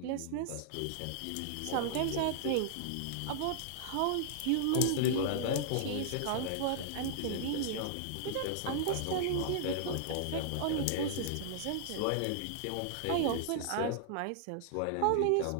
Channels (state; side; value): different; both; correlation -0.01